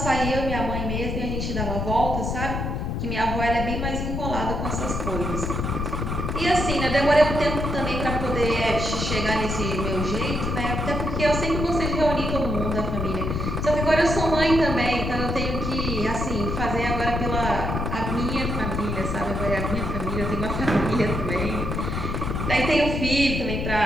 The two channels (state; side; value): noise; left; rumble, 2 dB below the sound